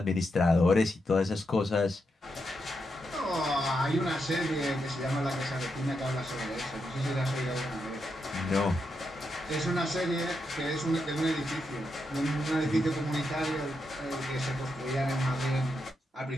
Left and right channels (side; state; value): both; normal; correlation 0.84